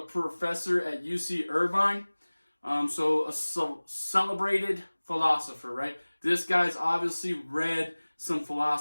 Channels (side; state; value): both; inverted; correlation -1.00